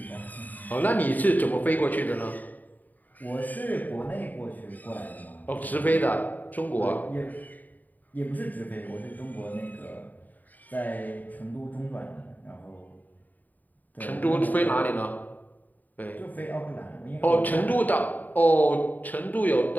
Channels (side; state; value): right; late; 0.083 ms